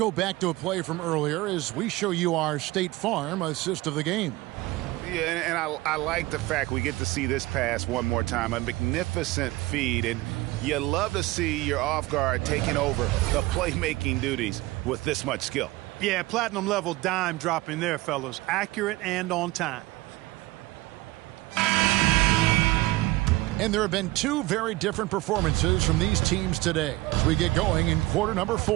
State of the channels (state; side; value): quieter; left; 19.5 dB